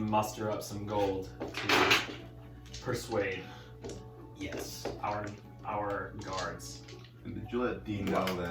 up some gold to persuade Yes. our guards. And did you let Dean know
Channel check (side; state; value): both; identical; correlation 1.00